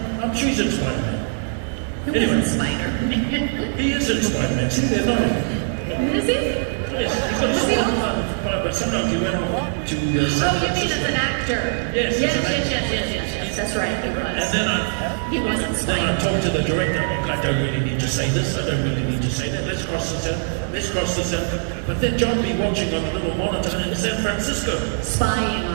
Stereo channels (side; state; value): left; silent; 64 dB below the other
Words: I'm sure he's in Spider-Man. Who Anyway. isn't Spider-Man? He is in Spider-Man. See, they're not. Is he? Yes, he's got a small but sometimes he went off to San Oh, you mean Francisco. as an actor? Yes, Yes, as an actor. yes. That's right, he was. And then He wasn't then I Spider-Man. talked to the director. I don't really need to say this. I don't really need to say that. Let's cross this out. Let's cross this out. But then John be watching on a little monitor in San Francisco. Spying